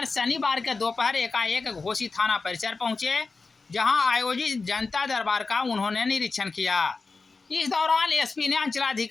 शनिवार के दोपहर एकाएक घोसी थाना परिसर पहुंचे, जहां आयोजित जनता दरबार का उन्होंने निरीक्षण किया। इस दौरान एसपी ने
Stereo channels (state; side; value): quieter; right; 4.1 dB